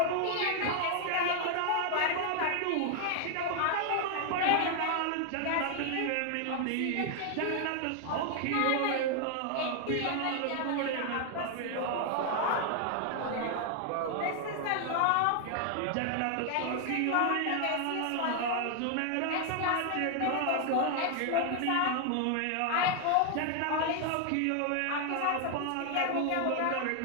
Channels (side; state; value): both; different; correlation 0.00